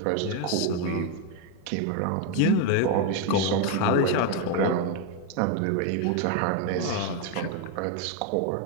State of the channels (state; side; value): different; both; correlation 0.01